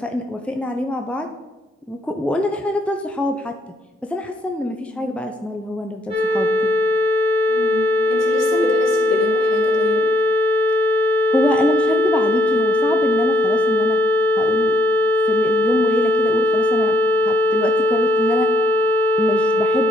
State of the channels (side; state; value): both; normal; correlation 0.71